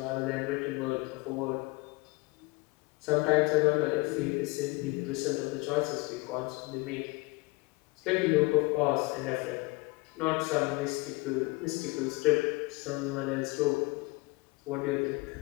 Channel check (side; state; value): right; quieter; 24.8 dB